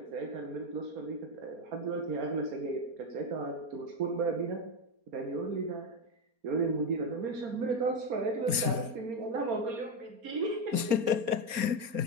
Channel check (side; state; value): left; late; 4.3 ms